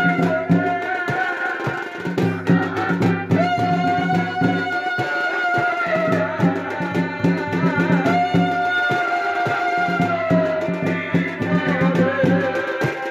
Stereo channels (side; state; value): both; identical; correlation 1.00